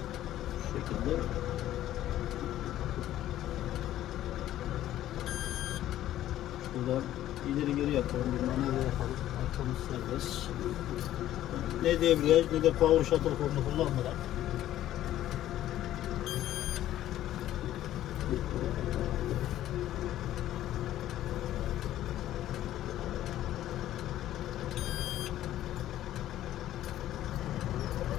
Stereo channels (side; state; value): right; quieter; 13.1 dB